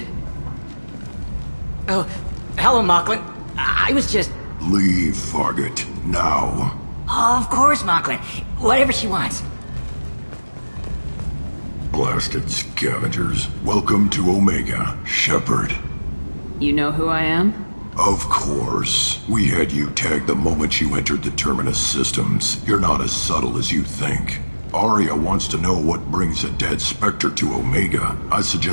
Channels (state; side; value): inverted; both; correlation -1.00